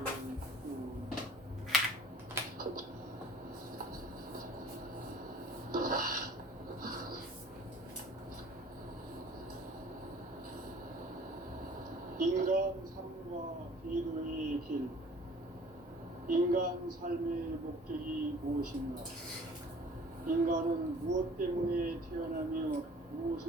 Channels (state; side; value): normal; both; correlation 0.50